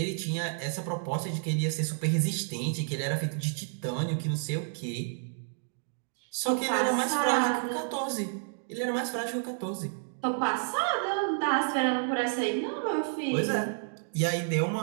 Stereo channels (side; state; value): left; silent; digital silence